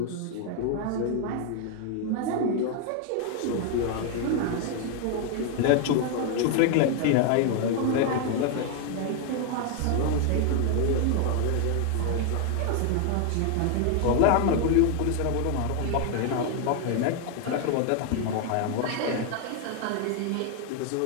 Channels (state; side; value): different; both; correlation 0.00